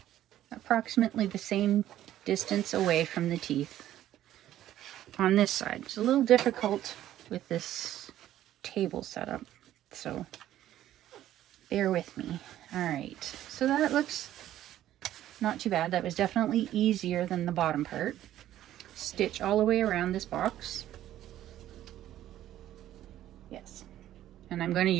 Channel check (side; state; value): left; quieter; 12.8 dB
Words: approximately the same distance away from the teeth on this side. It's a little difficult with this table setup, so bear with me. All right, so that looks not too bad. That was definitely easier than the bottom part. Stitch all the way around this box. Yes, and I'm going to